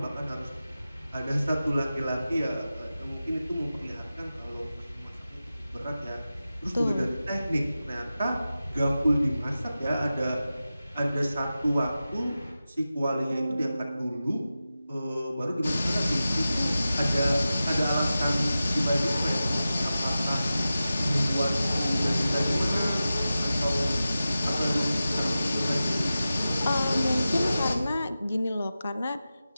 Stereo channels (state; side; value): inverted; both; correlation -0.94